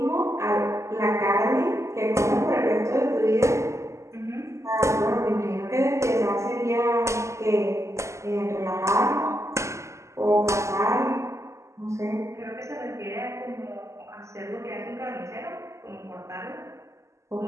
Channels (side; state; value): left; late; 0.14 ms